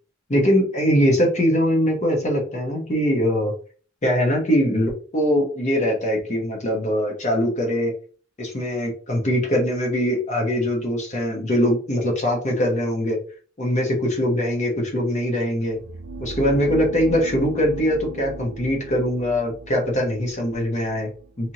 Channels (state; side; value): normal; both; correlation 0.58